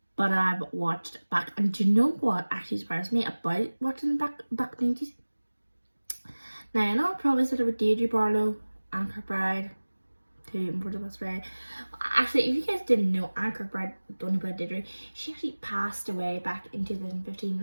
But I've watched back. And do you know what actually surprised me about watching back in the 90s? Now, I know I probably said about Deirdre Barlow, Anne Kirkbride, for the best way. Actually, if you guys didn't know, Anne Kirkbride, don't know about Deirdre, she actually passed away back in 2015,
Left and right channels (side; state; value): both; inverted; correlation -1.00